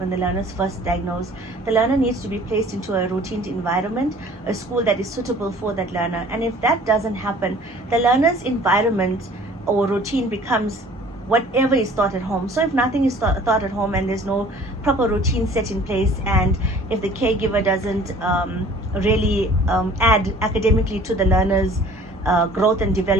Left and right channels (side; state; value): both; normal; correlation 0.50